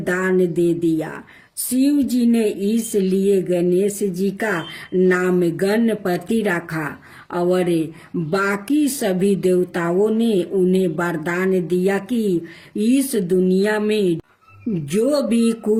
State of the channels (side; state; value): both; identical; correlation 1.00